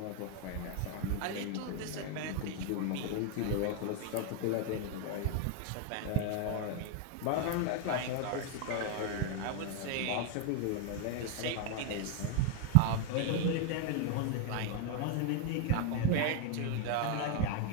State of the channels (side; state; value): both; different; correlation 0.01